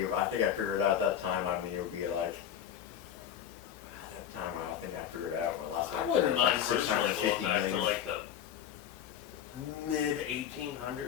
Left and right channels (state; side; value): quieter; right; 9.6 dB